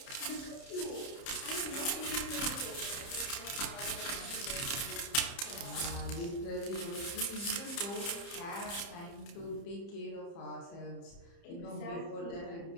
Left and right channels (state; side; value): late; right; 30 ms